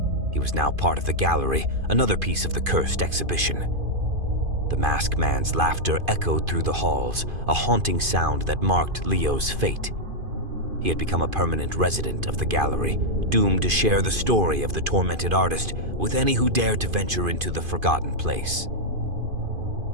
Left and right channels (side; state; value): left; late; 2.5 ms